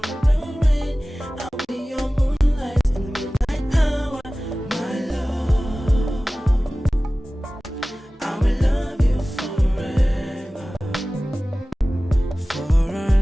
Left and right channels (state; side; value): normal; both; correlation 0.97